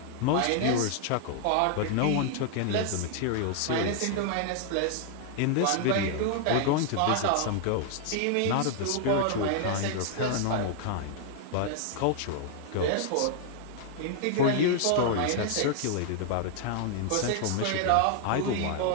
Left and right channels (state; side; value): different; both; correlation 0.00